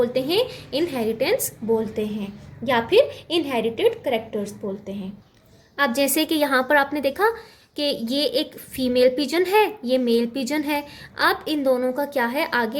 हैं? इनहेरिटेंस बोलते हैं या फिर इनहेरिटेड करेक्टर्स बोलते हैं। अब जैसे कि यहाँ पर आपने देखा कि ये एक फीमेल पिजन है, ये मेल पिजन है। अब इन दोनों का क्या है? आगे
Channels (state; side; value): identical; both; correlation 1.00